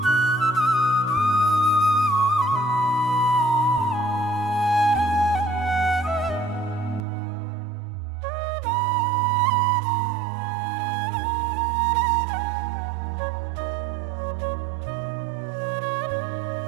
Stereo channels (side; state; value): left; drops out; at 7.1 s